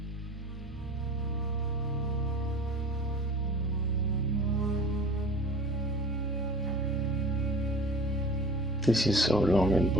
This is so long and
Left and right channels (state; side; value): normal; both; correlation 0.40